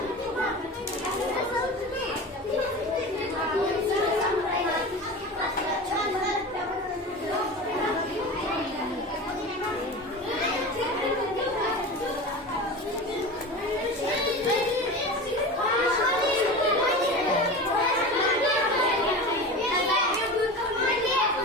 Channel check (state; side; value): normal; both; correlation 0.30